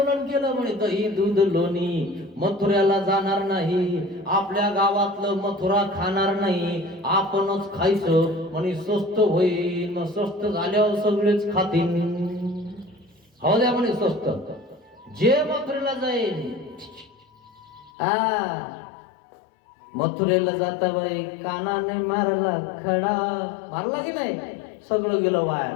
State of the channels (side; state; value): right; drops out; at 17.9 s